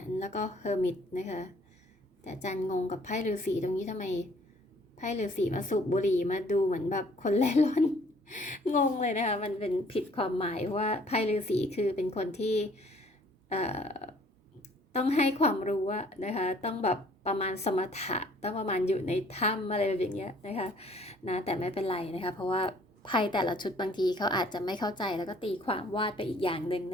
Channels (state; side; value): normal; both; correlation 0.58